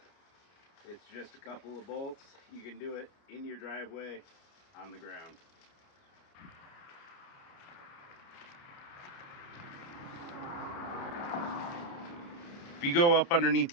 It's just a couple of bolts. You can do it in your driveway, on the ground. If you go up underneath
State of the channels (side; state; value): right; late; 29 ms